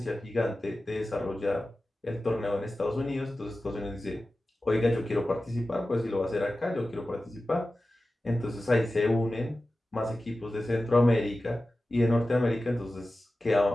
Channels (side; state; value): both; normal; correlation 0.95